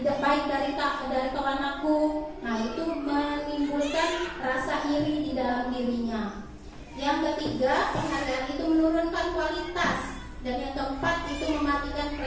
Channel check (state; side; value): identical; both; correlation 1.00